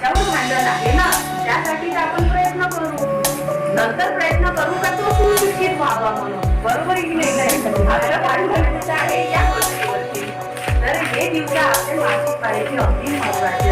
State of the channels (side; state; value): both; identical; correlation 1.00